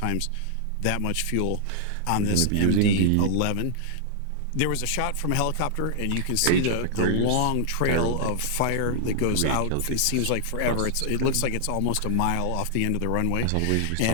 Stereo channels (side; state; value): both; different; correlation -0.01